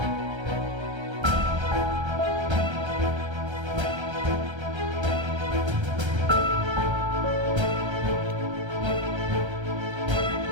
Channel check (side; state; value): left; late; 1.3 ms